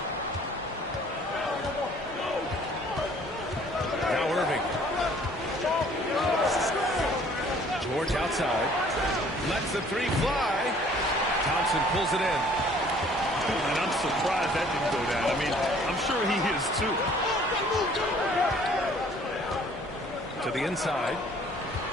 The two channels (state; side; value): normal; both; correlation 0.56